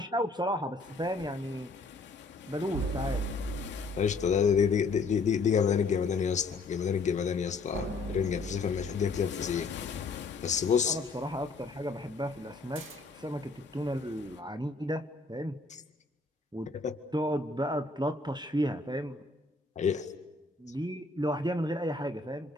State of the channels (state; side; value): quieter; right; 3.8 dB